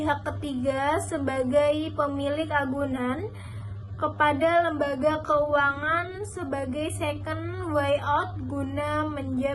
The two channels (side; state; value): both; identical; correlation 1.00